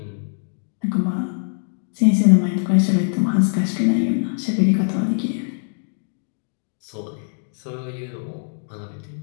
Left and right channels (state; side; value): silent; right; 61 dB below the other